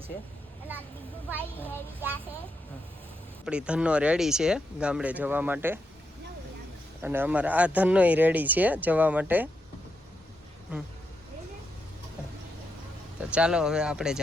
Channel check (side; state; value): both; normal; correlation 0.83